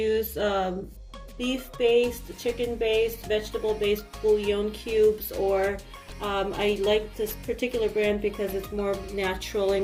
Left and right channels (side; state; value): both; identical; correlation 1.00